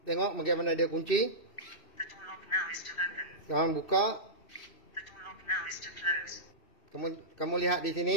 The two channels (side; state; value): right; late; 2.7 ms